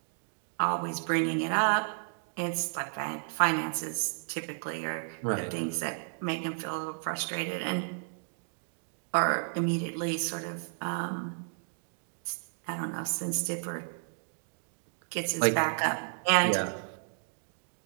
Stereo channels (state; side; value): silent; left; digital silence